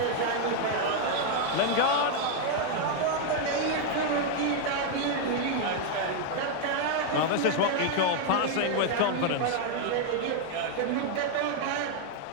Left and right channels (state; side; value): different; both; correlation 0.00